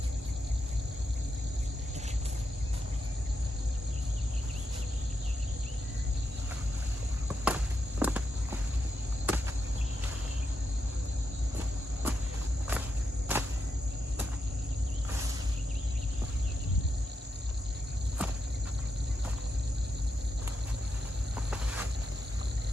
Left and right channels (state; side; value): normal; both; correlation 0.85